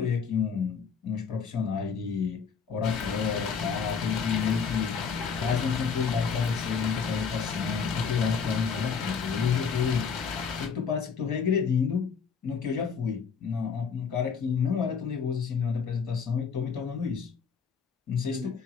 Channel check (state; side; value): quieter; right; 6.0 dB